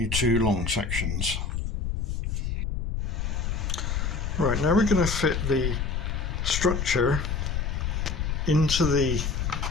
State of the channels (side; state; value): left; noise; rumble, 1 dB below the sound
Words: two long sections. Right, now we're going to fit the structure into the